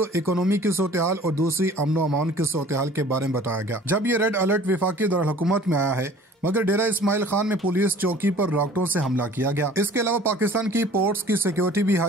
इकोनॉमी की सूरत-ए-हाल और दूसरी अमन अमान की सूरत-ए-हाल के बारे में बताया गया। जब ये रेड अलर्ट वफाकी दारुल-हुकूमत में आया है, मगर डेरा इस्माइल खान में पुलिस चौकी पर रॉकेटों से हमला किया गया। इसके अलावा पाकिस्तान की पोर्ट्स की सिक्योरिटी भी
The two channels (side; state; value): both; normal; correlation 0.49